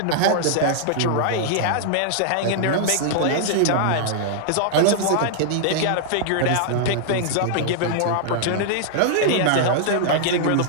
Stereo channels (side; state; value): both; different; correlation -0.01